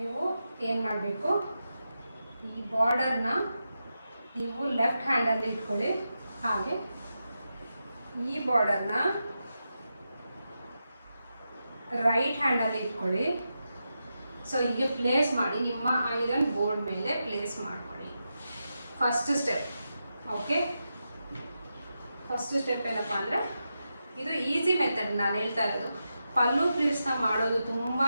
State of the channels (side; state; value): both; inverted; correlation -0.88